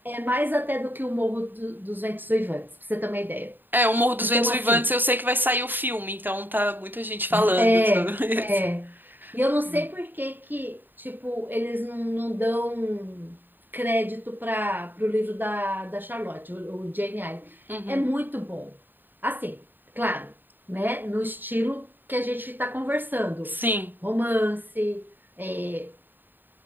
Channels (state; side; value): late; left; 0.092 ms